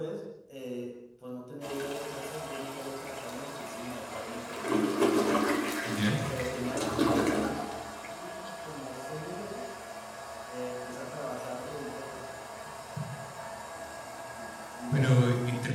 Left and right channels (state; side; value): identical; both; correlation 1.00